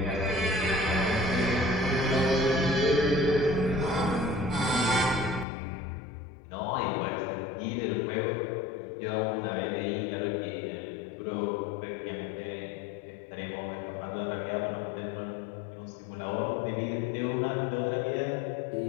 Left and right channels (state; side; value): drops out; right; at 5.5 s